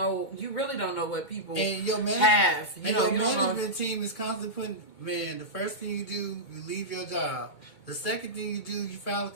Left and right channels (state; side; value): late; right; 2.2 ms